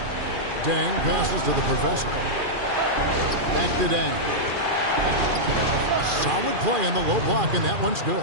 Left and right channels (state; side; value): late; left; 2.4 ms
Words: Dang passes to the professor. Back to Dang. Solid play in the low block, and that one's